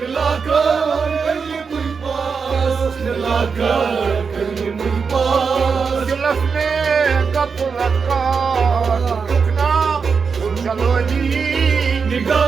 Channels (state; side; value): quieter; left; 5.5 dB